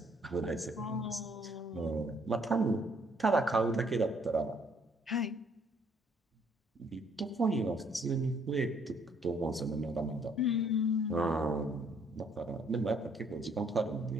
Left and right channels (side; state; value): both; normal; correlation 0.65